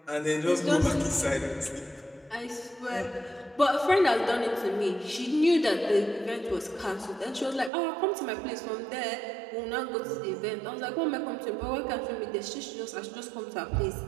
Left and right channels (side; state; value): left; drops out; at 7.7 s